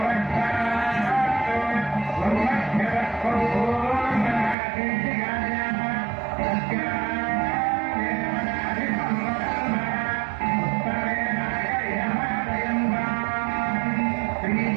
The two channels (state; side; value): drops out; left; at 4.5 s